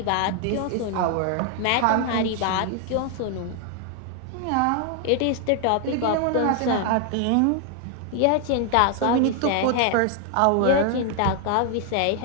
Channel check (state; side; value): different; both; correlation 0.00